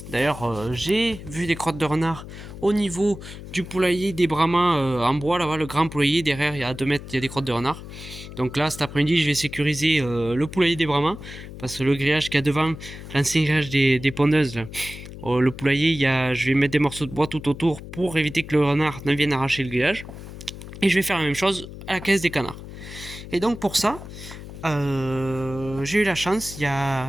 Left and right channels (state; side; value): noise; left; hum, 13 dB below the sound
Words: D'ailleurs, j'ai vu des crottes de renard au niveau du poulailler des Brahmas en bois, là-bas, le grand poulailler. Derrière, il y a 2 mètres, il y a des crottes de renard. Donc là, cet après-midi, je vais sécuriser le poulailler des Brahmas. Parce que le grillage qu'il y a devant, l'ancien grillage des pondeuses, là, le poulailler, je vais mettre des morceaux de bois tout autour pour éviter que le renard ne vienne arracher le grillage. Et je vais faire la même chose à la caisse des canards. Et donc pour ça, j'ai eu la chance, il y a